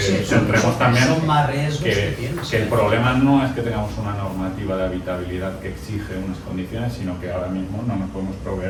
centremos también que el problema no es que tengamos una normativa de habitabilidad que exige unas condiciones, sino que ahora mismo no nos podemos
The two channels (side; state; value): both; identical; correlation 1.00